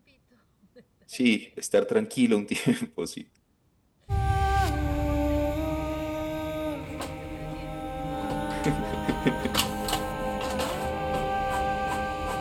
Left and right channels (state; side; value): identical; both; correlation 1.00